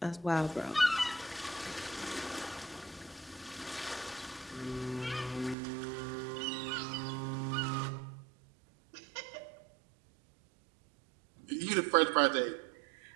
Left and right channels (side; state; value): left; drops out; at 5.6 s